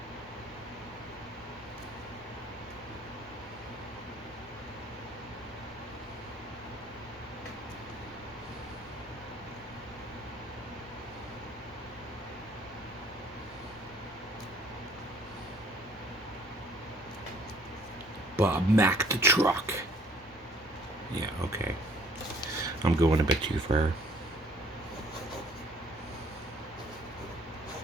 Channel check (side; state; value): both; normal; correlation 0.58